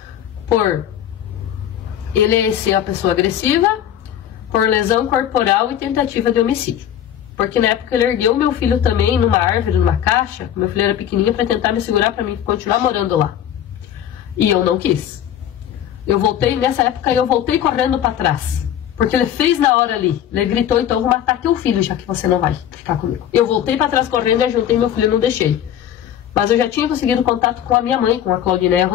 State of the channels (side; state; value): right; quieter; 10.4 dB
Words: por ele ser uma pessoa agressiva, por lesão corporal e tentativa de homicídio. Porque na época ele ergueu meu filho também numa árvore, numa caixa, meu filho era pequenininho, para tentar me segurar para mim continuar morando lá. E eu não quis. Eu voltei, nessa época eu voltei correndo para trás. Porque ele fez na hora ali. Ele gritou, então eu vou matar teu filho, já que você não vai ficar comigo. Eu voltei para trás correndo e ajuntei meu filho e não deixei. Mas eu já tinha conseguido contato com a minha mãe, com a Claudineia